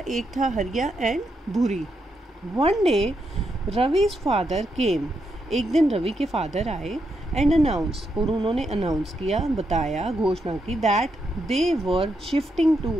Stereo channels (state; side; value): normal; both; correlation 0.81